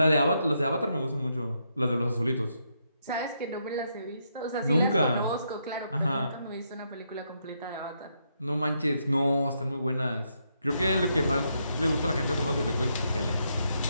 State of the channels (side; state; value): both; inverted; correlation -0.78